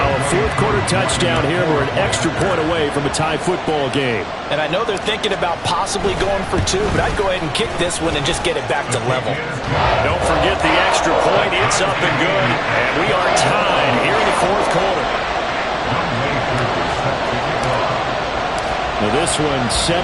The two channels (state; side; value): identical; both; correlation 1.00